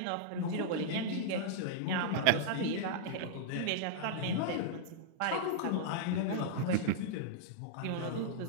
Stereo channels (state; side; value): different; both; correlation -0.02